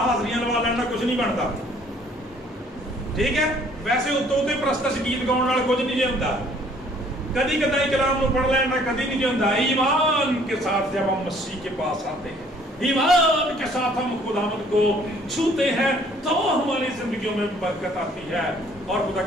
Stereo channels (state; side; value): normal; both; correlation 0.59